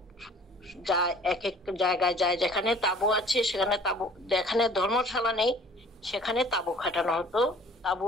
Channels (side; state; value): both; normal; correlation 0.51